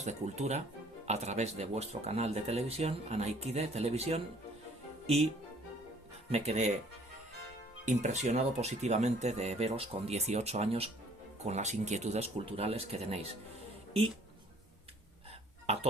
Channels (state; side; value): normal; both; correlation 0.57